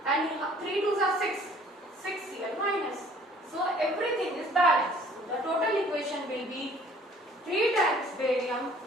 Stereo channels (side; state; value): both; normal; correlation 0.55